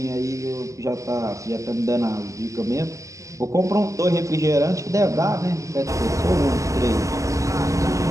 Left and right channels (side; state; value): left; late; 0.16 ms